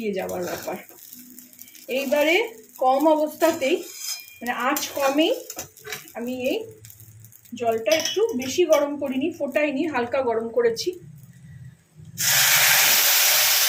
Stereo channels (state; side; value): identical; both; correlation 1.00